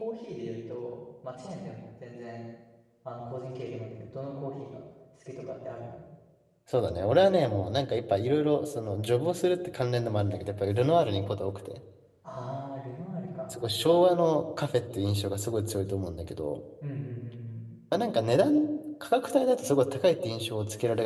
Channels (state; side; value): identical; both; correlation 1.00